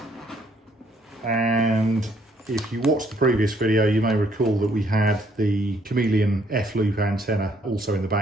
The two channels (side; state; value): both; normal; correlation 0.67